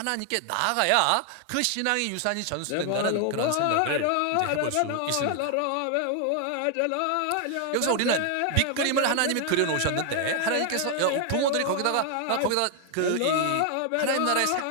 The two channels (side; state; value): both; different; correlation 0.00